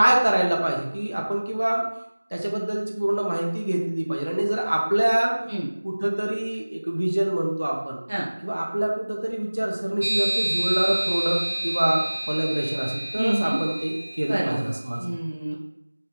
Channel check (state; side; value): inverted; both; correlation -1.00